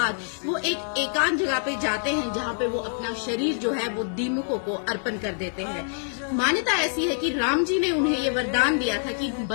वो एक एकांत जगह पे जाते हैं जहाँ पे वो अपना शरीर जो है वो दीमकों को अर्पण कर देते हैं। मान्यता ऐसी है कि राम जी ने उन्हें ये वरदान दिया था कि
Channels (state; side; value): silent; right; digital silence